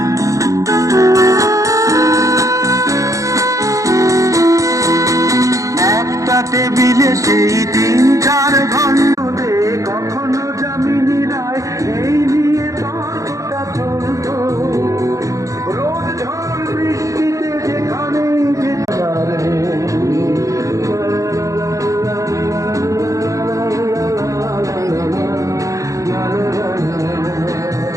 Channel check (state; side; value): late; left; 0.16 ms